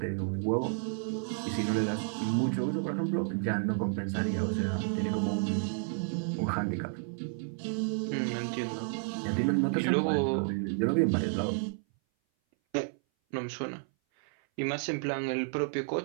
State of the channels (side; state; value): left; silent; 57 dB below the other